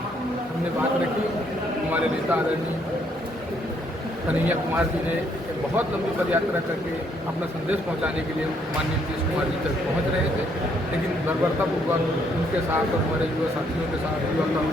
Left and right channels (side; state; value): both; normal; correlation 0.70